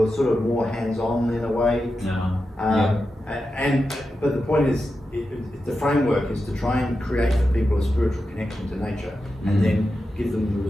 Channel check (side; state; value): both; normal; correlation 0.90